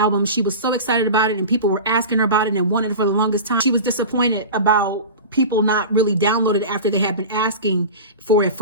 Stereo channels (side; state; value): both; inverted; correlation -0.30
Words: she was so excited about it and people were asking her about it and wanted it for the longest time. She was disappointed about people not really downloaded it after they had been asking for it